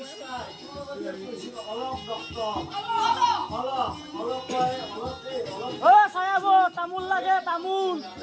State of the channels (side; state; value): both; identical; correlation 1.00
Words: Oh, saya bu, tamul lagi, tamul.